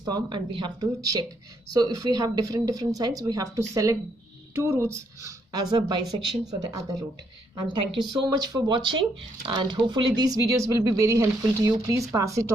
form and we have to check. So if we have different signs, we have to select two roots as a bisection for the other root. And thank you so much for watching, and hopefully these videos will be very helpful to you. Please pass it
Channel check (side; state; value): both; normal; correlation 0.74